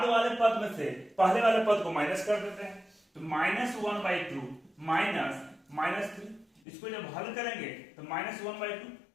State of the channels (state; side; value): drops out; right; at 6.6 s